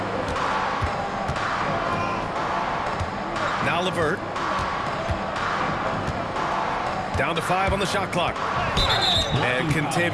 Now LeVert. Down to 5 on the shot clock. And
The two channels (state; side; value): identical; both; correlation 1.00